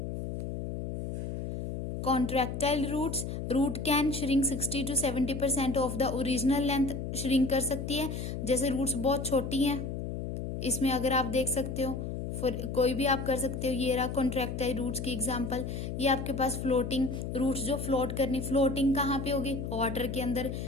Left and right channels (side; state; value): left; noise; hum, 5 dB below the sound